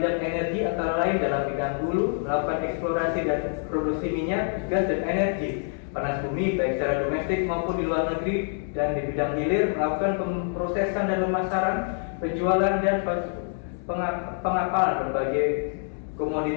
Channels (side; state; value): right; silent; 61 dB below the other